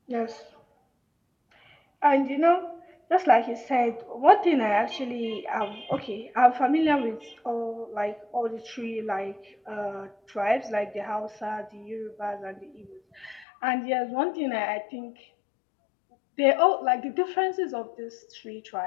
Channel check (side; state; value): right; drops out; at 13.5 s